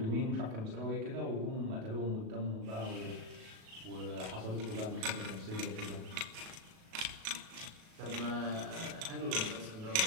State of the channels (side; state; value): left; late; 37 ms